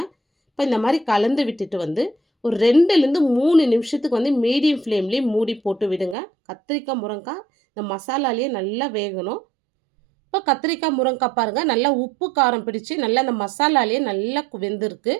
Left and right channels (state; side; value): drops out; left; at 6.2 s